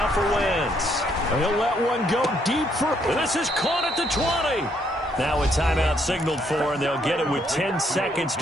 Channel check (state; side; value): normal; both; correlation 0.71